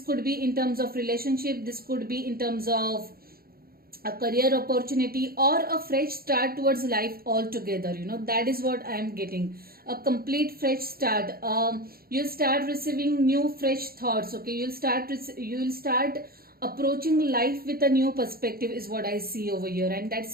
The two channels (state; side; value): late; left; 0.44 ms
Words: could be in terms of relationship. This could be in terms of a career opportunity, or a fresh start towards life altogether. That is what I am getting, a complete fresh start. You'll start receiving new fresh thoughts. Okay, you'll start approaching life with a new perspective is what I see over here, and that's